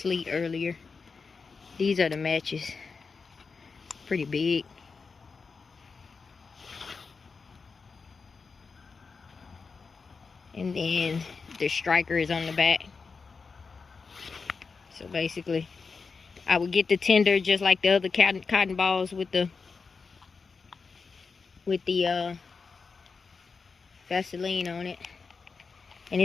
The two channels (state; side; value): quieter; right; 4.9 dB